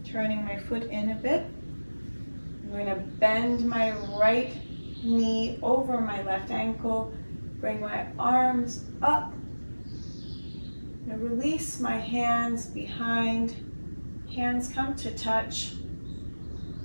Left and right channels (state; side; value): inverted; both; correlation -1.00